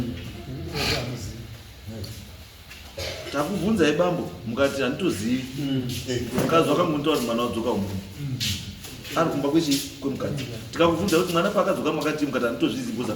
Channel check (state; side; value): identical; both; correlation 1.00